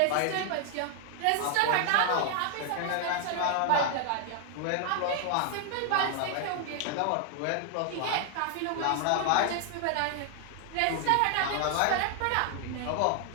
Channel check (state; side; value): different; both; correlation 0.00